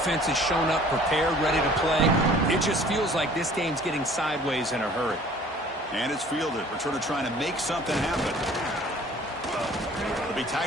has shown up, prepared, ready to play. It just feels like this game's getting sideways in a hurry. And it's fielded. Returner trying to make something happen. It'll be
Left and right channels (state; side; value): normal; both; correlation 0.51